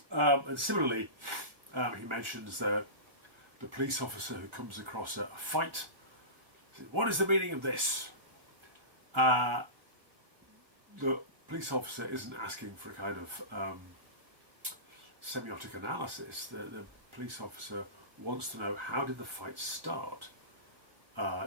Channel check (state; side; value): late; left; 1.5 ms